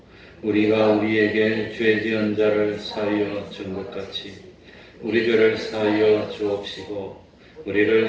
우리가 우리에게 죄 지은 자를 사하여 준 것 같이 우리 죄를 사하여 주옵시고 우리를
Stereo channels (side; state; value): both; identical; correlation 1.00